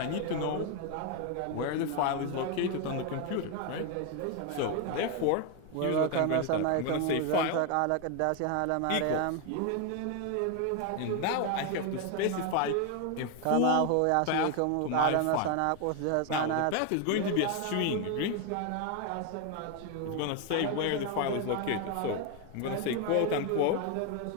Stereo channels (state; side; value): different; both; correlation 0.01